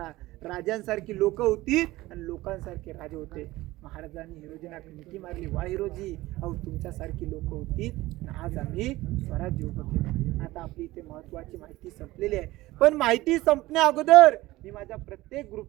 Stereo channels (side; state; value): left; quieter; 18.3 dB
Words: राजांसारखी लोक होती आणि लोकांसारखे राजे होते. महाराजांनी हिरोजींना मिठी मारली, वा हिरोजी, अहो तुमच्यासारखी लोक होती आणि आज आम्ही स्वराज्य उभं केलं. आता आपली इथे महत्वाची माहिती संपलेली आहे, पण माहिती संपण्या अगोदर मी माझ्या प्रत्येक